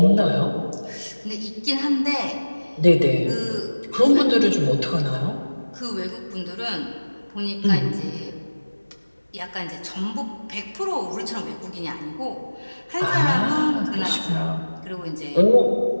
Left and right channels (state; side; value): inverted; both; correlation -1.00